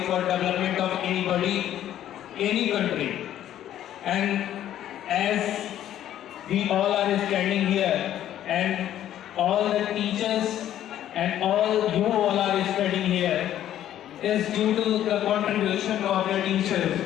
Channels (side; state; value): right; quieter; 11.7 dB